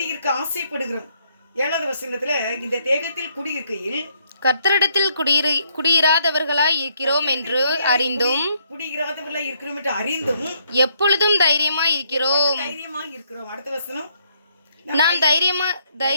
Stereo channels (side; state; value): both; inverted; correlation -0.72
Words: ஆசைப்படுகிறோம். 7வது வசனத்துல இந்த தேகத்தில் குடியிருக்கையில் கர்த்தரிடத்தில் குடியிராதவர்களாய் இருக்கிறோம் என்று அறிந்தும் எப்பொழுதும் தைரியமாய் இருக்கிறோம். அடுத்த வசனம், நாம்